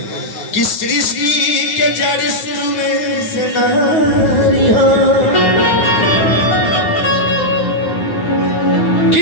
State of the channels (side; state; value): right; late; 9.6 ms